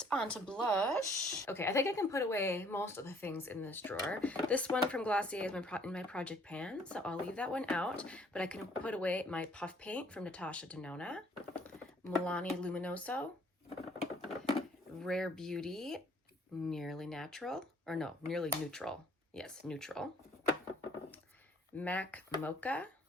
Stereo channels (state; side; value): normal; both; correlation 0.60